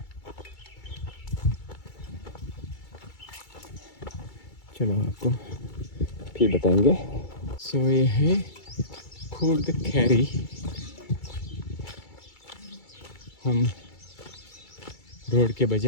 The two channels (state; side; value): late; right; 2.3 ms